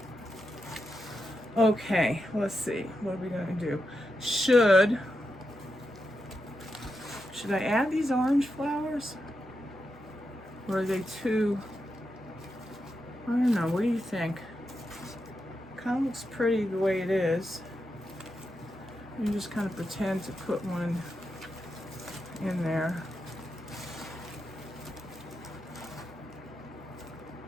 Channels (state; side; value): normal; both; correlation 0.87